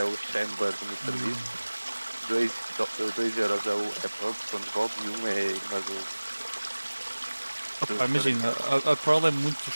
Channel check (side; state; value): both; inverted; correlation -1.00